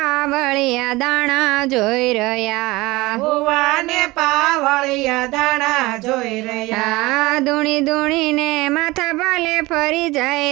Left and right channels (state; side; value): quieter; left; 21.1 dB